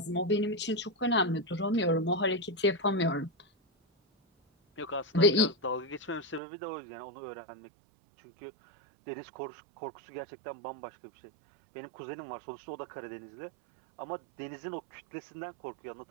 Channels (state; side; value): drops out; left; at 6.4 s